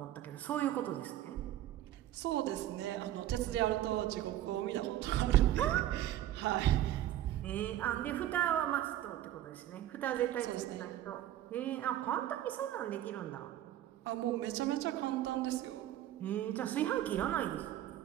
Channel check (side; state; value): left; quieter; 12.9 dB